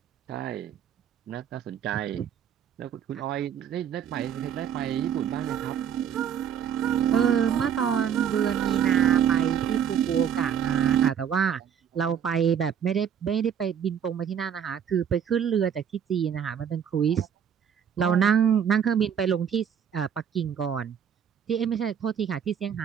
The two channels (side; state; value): left; quieter; 8.4 dB